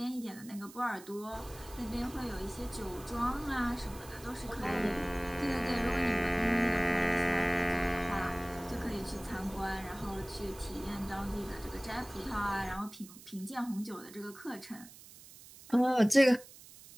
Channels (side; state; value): right; noise; hiss, 19 dB below the sound